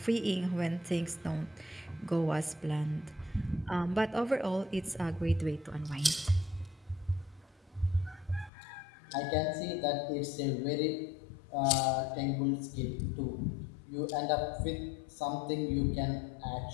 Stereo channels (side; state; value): right; drops out; at 8.5 s